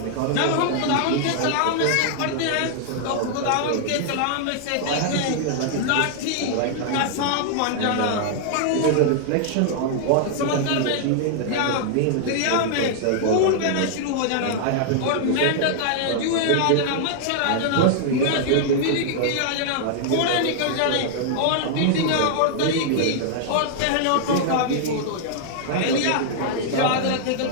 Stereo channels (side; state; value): both; different; correlation -0.01